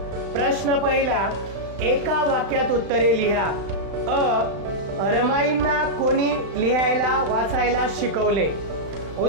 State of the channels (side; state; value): left; late; 35 ms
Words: प्रश्न पहिला, एका वाक्यात उत्तरे लिहा। रमाईंना कोणी लिहायला वाचायला शिकवले?